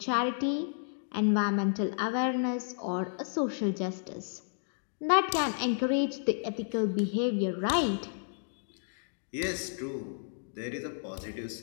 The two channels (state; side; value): silent; right; digital silence